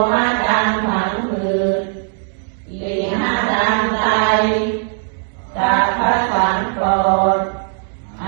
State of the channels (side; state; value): left; silent; digital silence